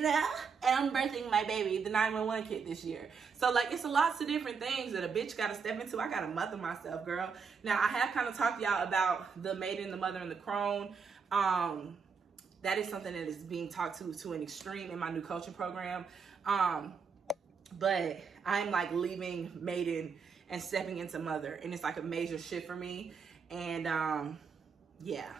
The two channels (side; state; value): left; quieter; 5.7 dB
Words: know, and I'm birthing my baby, the 911 kid, this year. So like, it's lots of different things that a bitch gotta step into. I gotta mother myself, girl. Now, I have kind of talked to y'all about the maiden, the mother, and the crone. That is something that is being talked to an extreme in my new coaching program. But I'm like leaving maiden and stepping into mother, and it's like a major shift for me. And yeah.